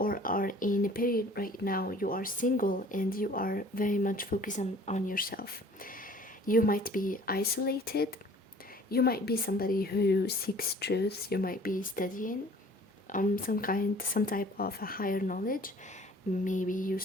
are in a period right now, you are single and you are very much focused on yourself. You might be isolated. You might be somebody who seeks truth. You might be studying some type of a higher knowledge. Maybe you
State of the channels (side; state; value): both; normal; correlation 0.51